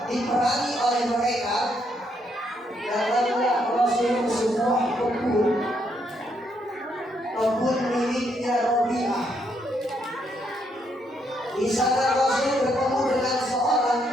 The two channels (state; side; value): normal; both; correlation 0.75